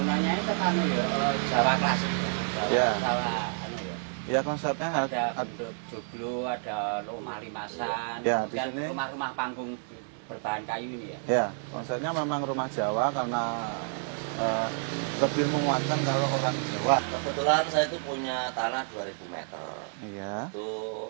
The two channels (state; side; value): silent; left; 58 dB below the other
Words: itu kan ya Jawa klasik. Ya. Jawa anu ya. Ya konsepnya Ada bentuk joglo, ada rumah limasan. Ya, di dan sini- rumah-rumah panggung berbahan kayu ini ya. ya konsepnya memang rumah Jawa karena lebih menguatkan kalau orang Jawa. Kebetulan saya itu punya tanah 2000 meter. Iya. Itu